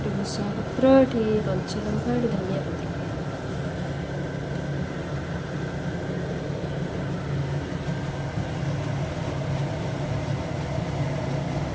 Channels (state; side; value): identical; both; correlation 1.00